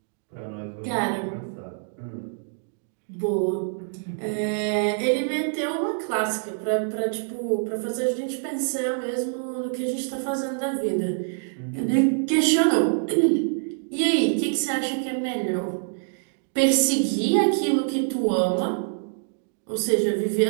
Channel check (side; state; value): left; silent; digital silence